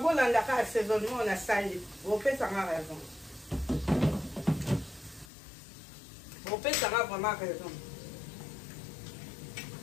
bon là d'accord assaisonnement on a salé on fait ça raison on fait ça vraiment raison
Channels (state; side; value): drops out; right; at 5.3 s